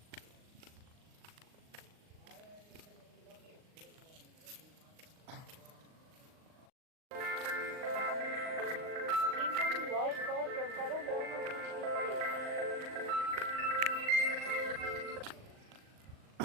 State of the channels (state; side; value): late; left; 39 ms